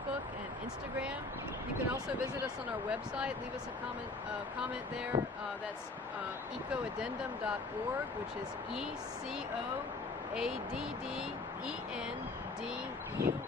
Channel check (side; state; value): right; quieter; 3.4 dB